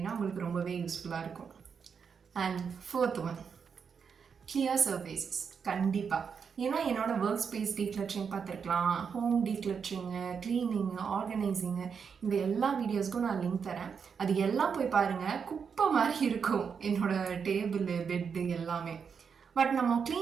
உங்களுக்கு ரொம்பவே யூஸ்ஃபுல்லாக இருக்கும். And fourth one, clear surfaces. கண்டிப்பாக, ஏன்னா என்னோடய ஒர்க் ஸ்பேஸ் டீக்ளட்டரிங் பார்த்துருக்கலாம், ஹோம் டீக்ளட்டரிங்கு, க்ளீனிங்கு, ஆர்கனைசிங்கு, இந்த எல்லா வீடியோஸ்க்கும் நான் லிங்க் தரேன். அது எல்லாம் போய் பாருங்கள். குப்பை மாதிரி இருக்கும் என்னோடய டேபிள், பெட்டு எல்லாமே. பட் நம்ம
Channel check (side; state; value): left; quieter; 6.4 dB